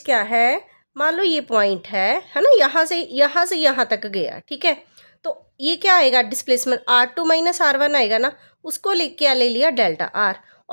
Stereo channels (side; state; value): both; inverted; correlation -1.00